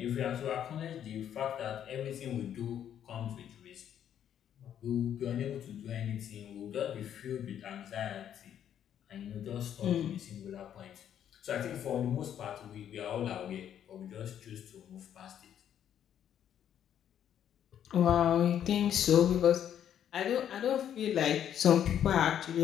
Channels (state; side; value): quieter; right; 9.8 dB